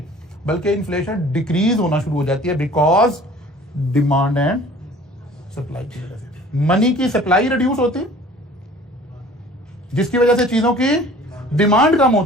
बल्कि इन्फ्लेशन डिक्रीज होना शुरू हो जाती है बिकॉज डिमांड एंड सप्लाई की वजह से मनी की सप्लाई रिड्यूस होती है, जिसकी वजह से चीजों की डिमांड कम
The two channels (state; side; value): normal; both; correlation 0.48